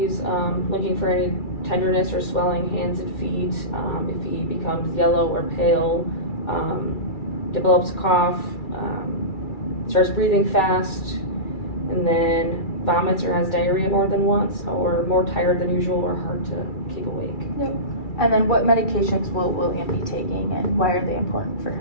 looking for any tenderness or swelling hands and feet, if he becomes yellow or pale, develops a cough, starts breathing fast, and then vomits or has diarrhea more than once, or more tired than usual or hard to keep awake. Yep. And then what medications will William be taking and why are they important for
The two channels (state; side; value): late; right; 2.3 ms